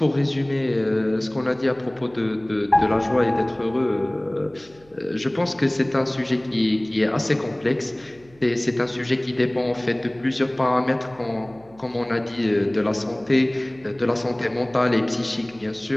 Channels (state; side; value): noise; right; hum, 28 dB below the sound